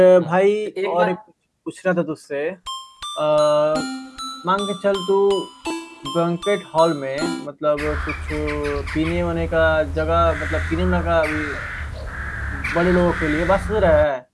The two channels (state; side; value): identical; both; correlation 1.00